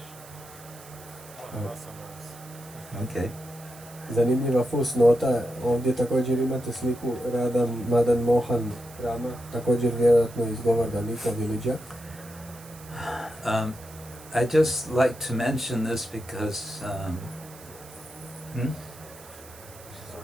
Okay. Zanimljiva fusnota, ovdje također imate sliku Radha Madan Mohan Rama, također vjerojatno iz Govardhan Eco-Village. I just like to mention this because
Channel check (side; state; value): right; noise; hiss, 20 dB below the sound